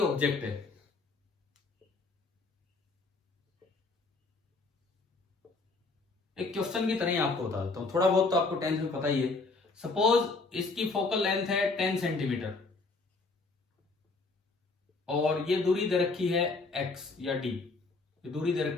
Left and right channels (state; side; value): quieter; right; 3.8 dB